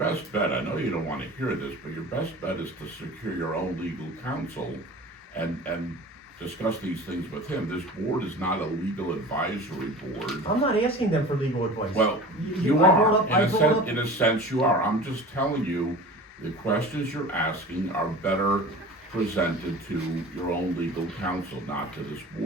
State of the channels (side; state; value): both; normal; correlation 0.38